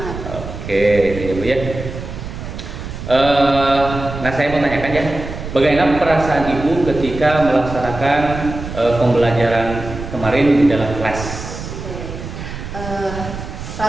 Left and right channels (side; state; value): right; noise; rumble, 9 dB below the sound